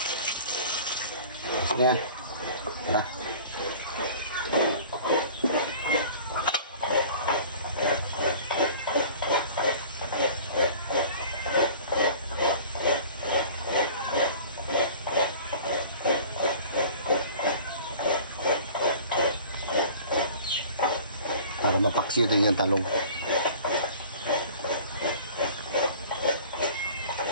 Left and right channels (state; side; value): inverted; both; correlation -0.44